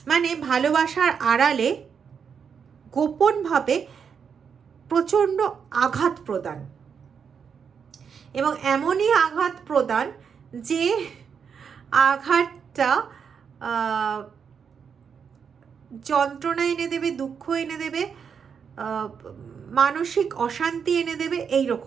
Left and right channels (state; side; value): quieter; left; 6.7 dB